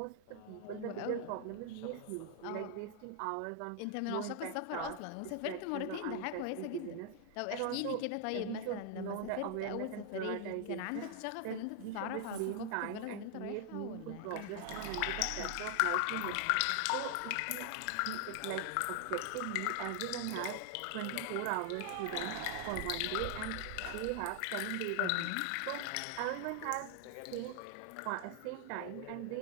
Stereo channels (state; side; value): different; both; correlation 0.00